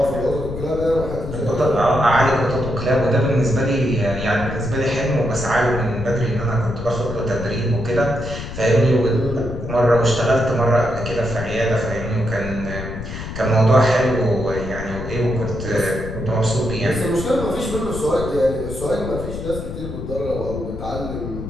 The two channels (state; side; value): noise; left; rumble, 8 dB below the sound